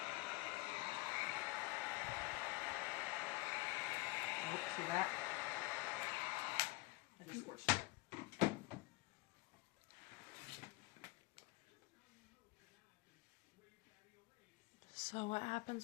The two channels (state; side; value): quieter; right; 23.0 dB